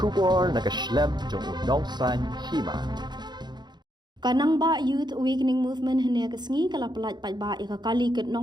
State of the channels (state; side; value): late; left; 0.21 ms